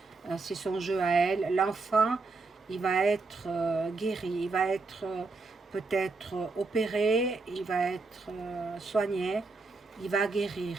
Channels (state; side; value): quieter; left; 3.8 dB